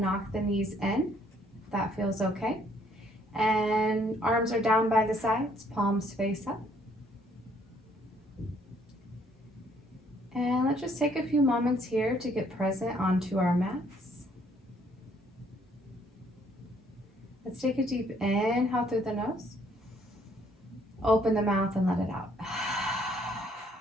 the knees in, if that feels okay. And arms are down by the sides, palms face up. And let's just take a few moments here to get present onto our mats. Let's take a deep inhale through the nose. Open the mouth and let it out.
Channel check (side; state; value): both; normal; correlation 0.65